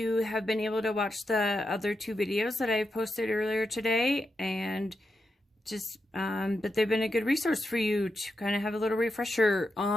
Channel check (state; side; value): normal; both; correlation 0.86